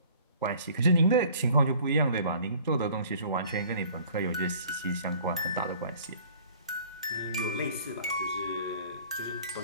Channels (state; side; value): inverted; both; correlation -0.52